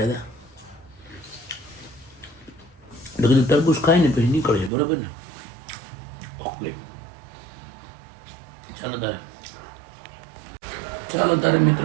હતા એટલે કીધું તરબૂચ ખાઈને પછી નીકળીએ, બરાબર ને? ઓકે, ચાલો તારે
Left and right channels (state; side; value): drops out; left; at 4.7 s